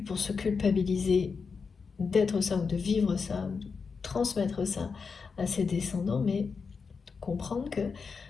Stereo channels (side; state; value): right; quieter; 5.2 dB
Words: pour se culpabiliser d'être ça ou de vivre ça ou de transmettre ça à ses descendants, mais comprendre que